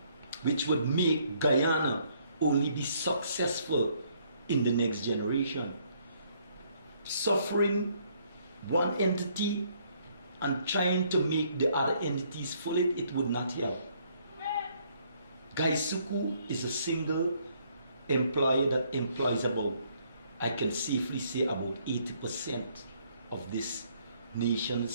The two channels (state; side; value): inverted; both; correlation -0.67